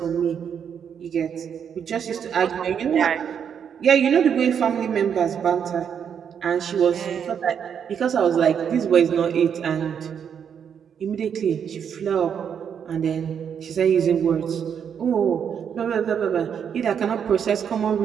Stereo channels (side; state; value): left; quieter; 7.8 dB